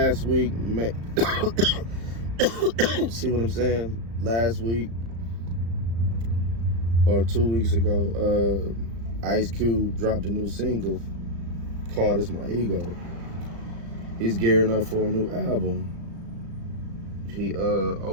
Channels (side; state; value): left; late; 35 ms